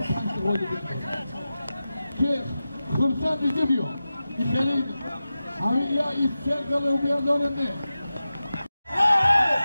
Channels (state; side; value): inverted; both; correlation -0.94